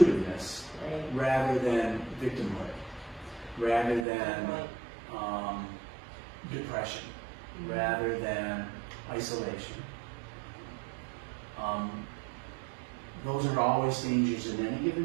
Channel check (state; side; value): drops out; left; at 4.0 s